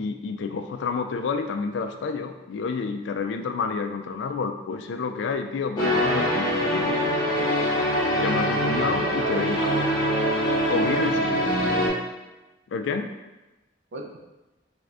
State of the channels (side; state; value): both; normal; correlation 0.18